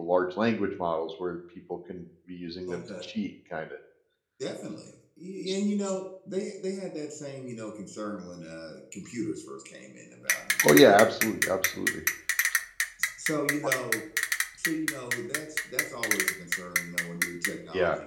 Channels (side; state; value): both; identical; correlation 1.00